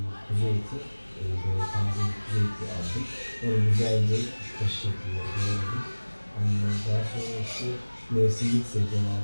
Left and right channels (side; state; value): both; inverted; correlation -1.00